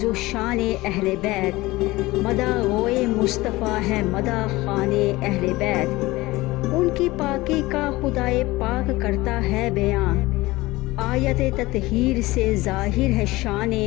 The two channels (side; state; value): right; quieter; 19.9 dB